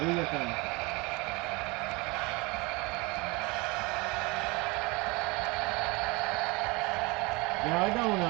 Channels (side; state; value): left; quieter; 25.6 dB